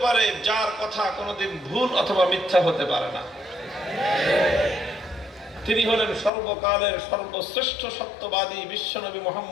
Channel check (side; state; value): right; drops out; at 6.3 s